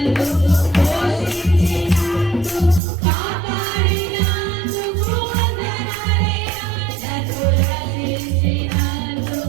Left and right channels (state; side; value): drops out; left; at 2.8 s